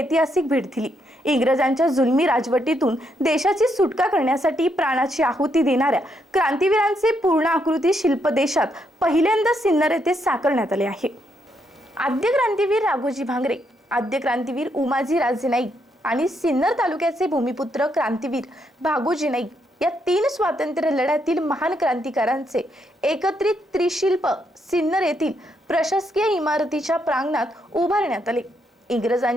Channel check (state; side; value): normal; both; correlation 0.77